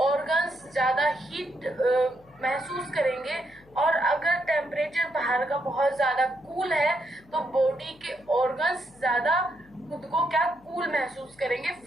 ऑर्गन्स ज्यादा हीट महसूस करेंगे, और अगर टेम्परेचर बाहर का बहुत ज्यादा कूल है तो बॉडी के ऑर्गन्स ज्यादा खुद को क्या कूल महसूस करेंगे,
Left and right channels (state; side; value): noise; left; hum, 27 dB below the sound